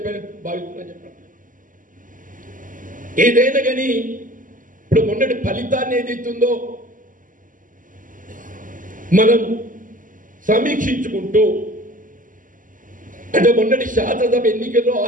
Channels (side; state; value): left; late; 0.38 ms